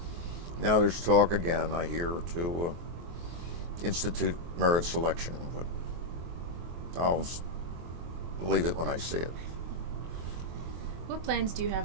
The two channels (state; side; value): late; left; 23 ms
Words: Now there's talk again, I hear, to institute merit selection, but I'll believe it when I see it. What plans do you have